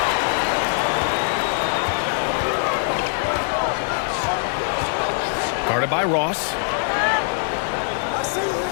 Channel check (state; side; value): silent; right; 64 dB below the other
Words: Guarded by Ross.